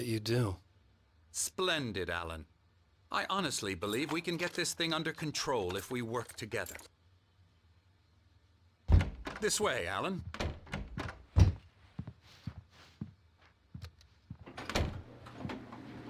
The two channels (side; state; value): both; identical; correlation 1.00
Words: you do. Splendid, Alan. I honestly believe we can get this thing under control if we work together. This way, Alan.